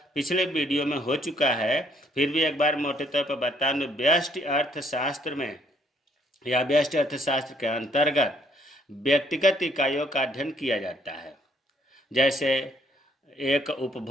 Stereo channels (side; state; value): both; normal; correlation 0.66